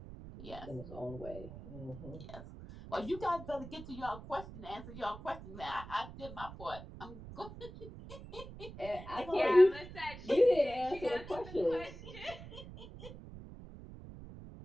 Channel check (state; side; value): noise; right; rumble, 13 dB below the sound